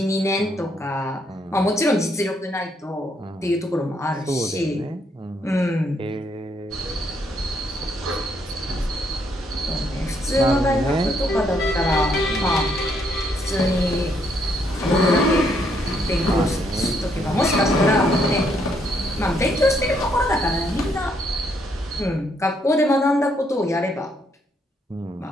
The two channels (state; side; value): normal; both; correlation 0.72